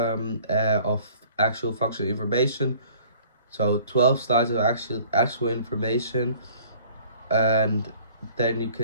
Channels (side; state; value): both; inverted; correlation -0.52